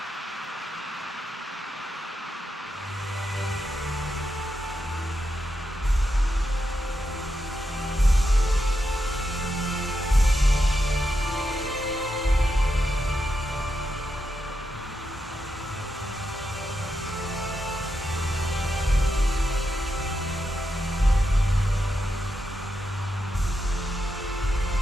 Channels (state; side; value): normal; both; correlation 0.85